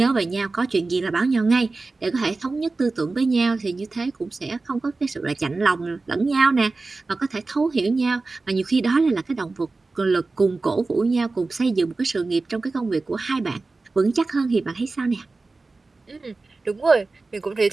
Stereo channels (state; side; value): quieter; left; 3.6 dB